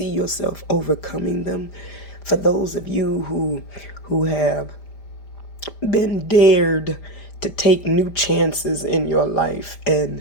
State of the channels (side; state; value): right; late; 5.0 ms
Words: yourself overcoming them. For those of you who have been dared to take new chances in your life